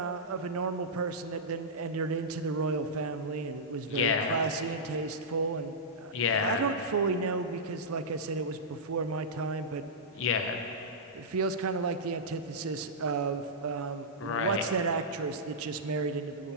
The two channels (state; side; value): normal; both; correlation -0.12